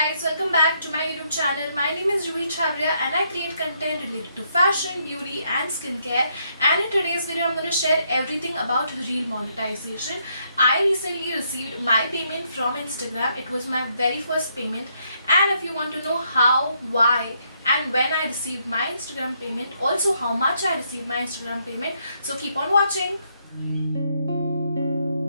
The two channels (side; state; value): both; inverted; correlation -0.74